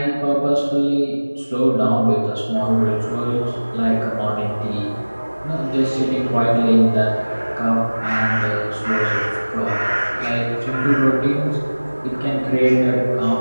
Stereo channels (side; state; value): both; inverted; correlation -1.00